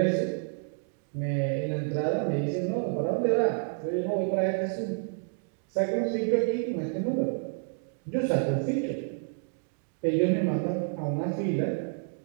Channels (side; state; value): left; silent; digital silence